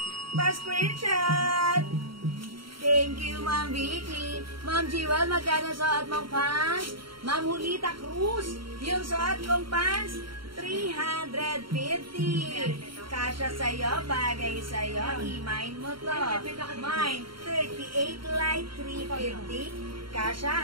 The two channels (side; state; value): left; late; 0.73 ms